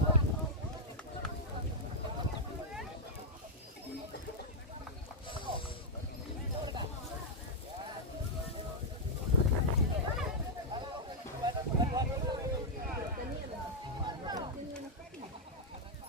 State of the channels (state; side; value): normal; both; correlation -0.05